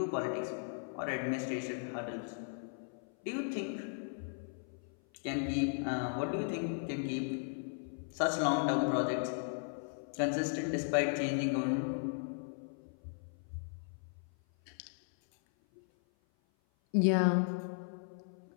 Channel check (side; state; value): right; silent; 53 dB below the other